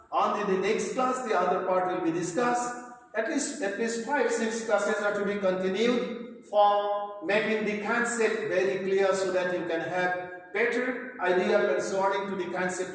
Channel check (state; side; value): identical; both; correlation 1.00